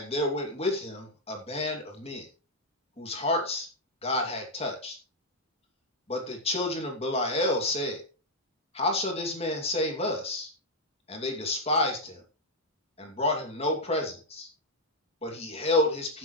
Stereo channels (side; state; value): both; normal; correlation -0.02